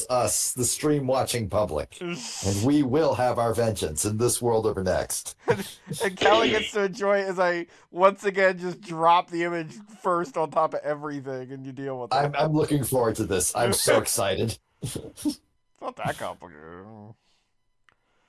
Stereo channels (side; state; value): both; identical; correlation 1.00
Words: us, the stream watching public. And we will have our vengeance in this world or next. And Callie gets to enjoy it as I once again just drop the image first on top of everything, and you deal with it. I'm looking forward to this. I'm so excited. It's not that complicated.